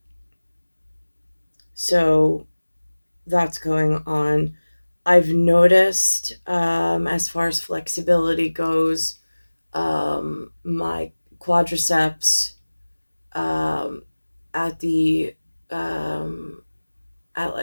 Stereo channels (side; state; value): both; inverted; correlation -1.00